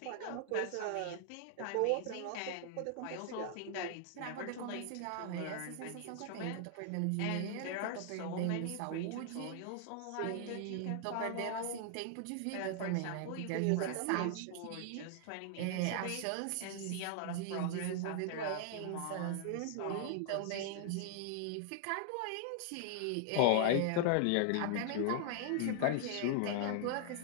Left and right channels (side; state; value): both; different; correlation -0.01